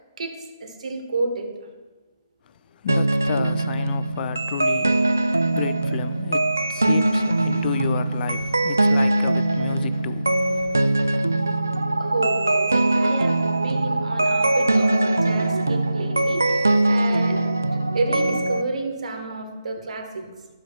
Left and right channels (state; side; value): inverted; both; correlation -0.91